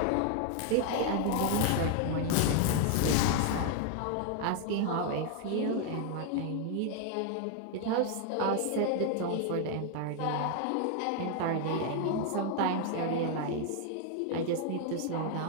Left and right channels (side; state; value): both; different; correlation 0.00